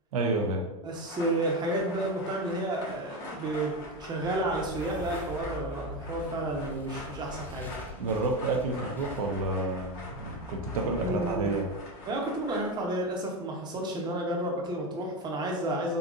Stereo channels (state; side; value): normal; both; correlation 0.17